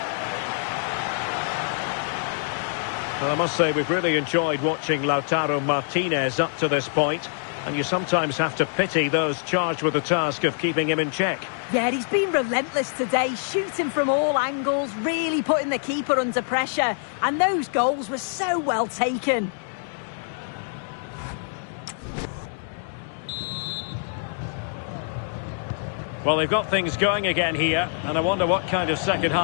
Well, I must say we've really enjoyed watching Lautaro Martinez up to this point, and you sometimes have to pity those charged with the task of keeping him in check. Yeah, he's been relentless today, shooting from all angles, really putting the keeper under pressure. And those goals were so well taken. Well, they've got things going again here, and I wonder what kind of second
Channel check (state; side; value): silent; right; digital silence